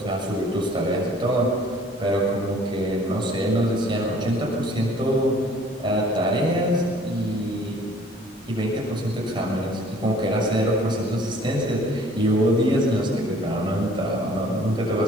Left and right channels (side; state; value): both; normal; correlation 0.54